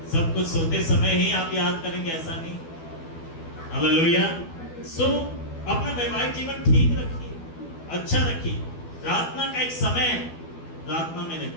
सब कुछ सोते समय ही आप याद करेंगे, ऐसा नहीं। हालेलुया। सो अपना वैवाहिक जीवन ठीक रखिए, अच्छा रखिए। प्रार्थना का एक समय है, प्रार्थना में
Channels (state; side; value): late; right; 12 ms